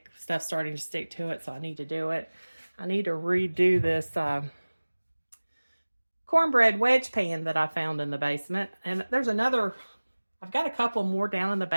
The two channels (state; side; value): inverted; both; correlation -1.00